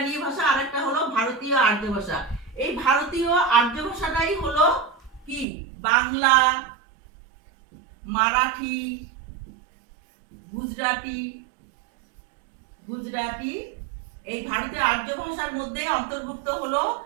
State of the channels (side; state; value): left; drops out; at 5.5 s